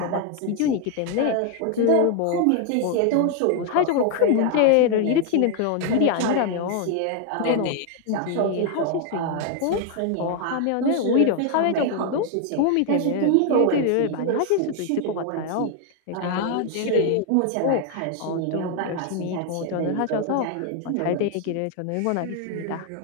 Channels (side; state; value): both; different; correlation 0.01